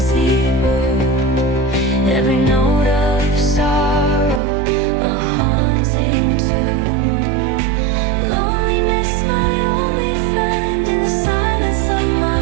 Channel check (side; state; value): left; drops out; at 4.4 s